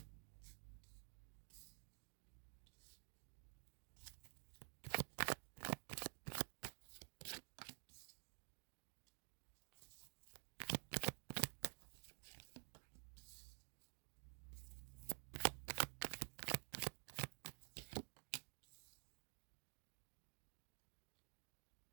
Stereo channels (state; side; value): silent; left; digital silence